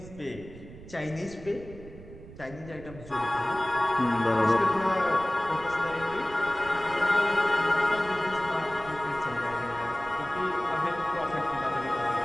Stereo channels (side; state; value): right; noise; rumble, 16 dB below the sound